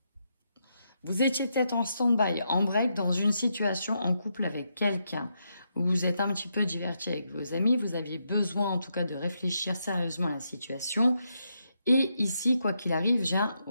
vous étiez peut-être en stand-by, en break, dans une situation en couple avec quelqu'un. Vous êtes un petit peu diverti avec vos amis. Vous aviez besoin, en tout cas, de réfléchir sérieusement à la situation. Et ici, quoi qu'il arrive, j'ai un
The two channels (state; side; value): inverted; both; correlation -0.81